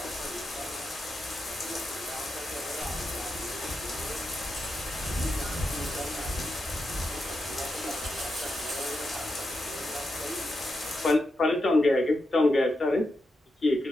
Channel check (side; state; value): both; normal; correlation 0.87